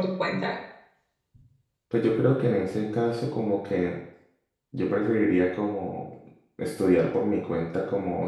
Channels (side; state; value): both; identical; correlation 1.00